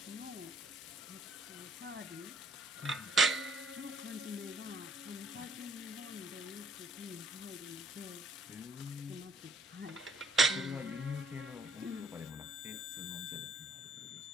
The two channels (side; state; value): both; normal; correlation 0.63